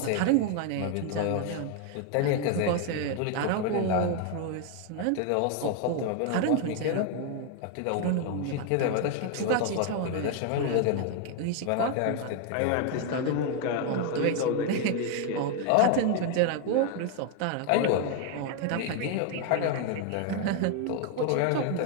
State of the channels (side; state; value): both; different; correlation 0.01